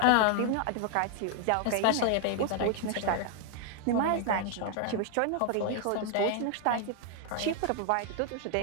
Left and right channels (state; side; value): different; both; correlation 0.00